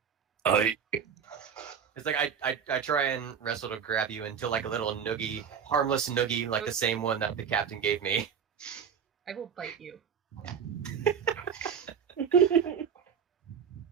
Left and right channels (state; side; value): quieter; left; 7.3 dB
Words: It's like I try and wrestle to grab you into like a little noogie, harmless noogie, like the same one that the captain gave me. I will bite you.